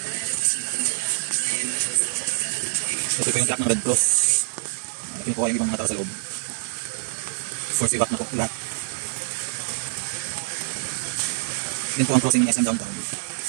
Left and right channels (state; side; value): silent; left; 62 dB below the other